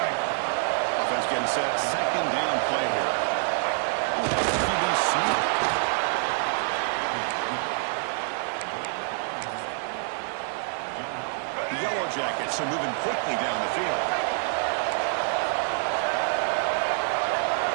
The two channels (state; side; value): silent; left; 60 dB below the other